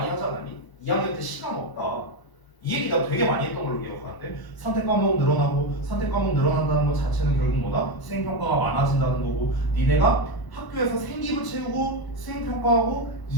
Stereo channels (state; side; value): late; right; 1.0 ms